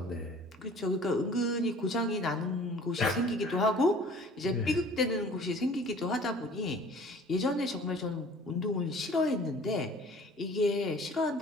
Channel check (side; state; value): both; normal; correlation 0.49